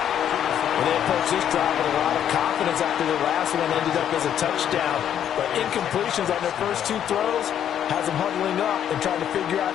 And they approach this drive with a lot of confidence after the last one ended up as a touchdown. But incompletions on their first 2 throws has them huddling up and trying to figure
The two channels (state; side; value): quieter; right; 9.8 dB